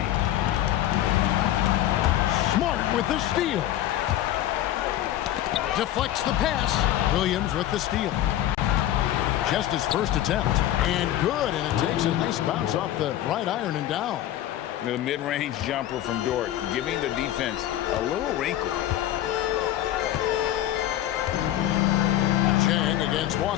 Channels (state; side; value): quieter; right; 12.9 dB